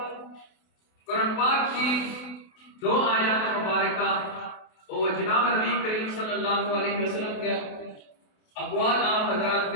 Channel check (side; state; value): right; late; 28 ms